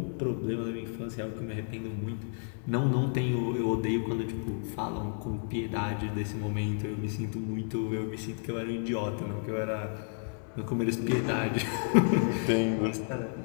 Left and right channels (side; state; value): right; silent; 57 dB below the other